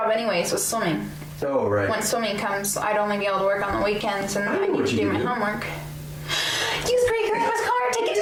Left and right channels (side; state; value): both; identical; correlation 1.00